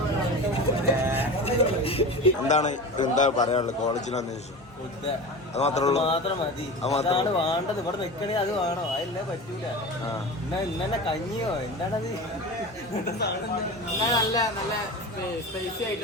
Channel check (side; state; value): both; normal; correlation 0.30